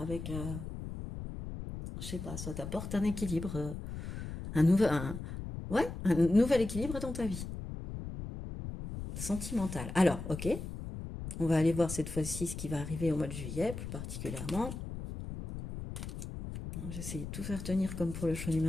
avec, je sais pas, ça t'apporte un équilibre, ouais, un nouvel équilibre dans ta vie, sentimental. Alors, ok, on va aller voir cette fois-ci ce qui va arriver au mois de juillet, plus particulièrement. J'essaie de tout faire tenir comme pour le choix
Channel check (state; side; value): noise; left; rumble, 8 dB below the sound